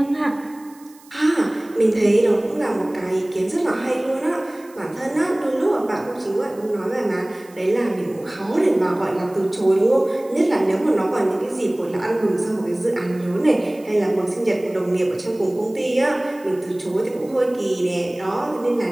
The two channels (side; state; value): right; noise; hiss, 26 dB below the sound